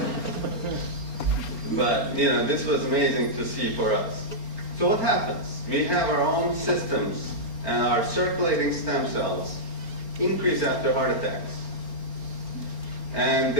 But you know, this was amazing to see for us. So what happens? We have our own systems, and our circulating stem cells increase after heart attacks. And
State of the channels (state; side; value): late; right; 4.4 ms